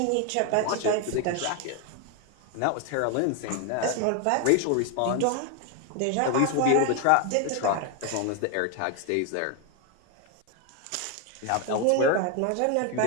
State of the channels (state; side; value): different; both; correlation 0.01